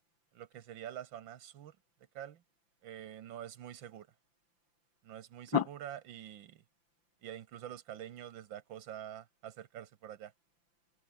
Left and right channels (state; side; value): late; left; 5.9 ms